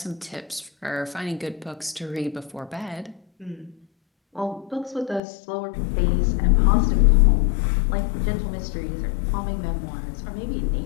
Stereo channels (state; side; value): drops out; right; at 5.2 s